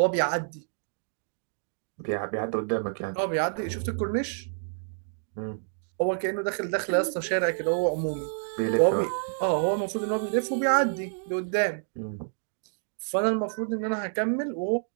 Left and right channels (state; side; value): silent; left; digital silence